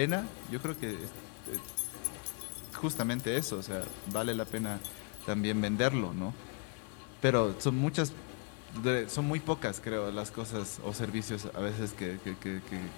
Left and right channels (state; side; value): quieter; right; 34.6 dB